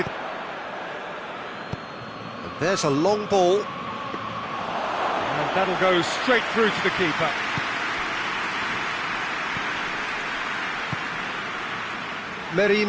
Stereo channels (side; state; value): both; identical; correlation 1.00